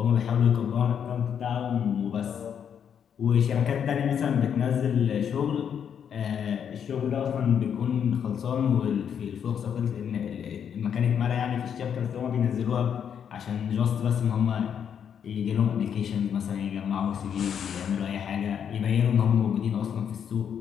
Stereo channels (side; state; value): right; quieter; 8.1 dB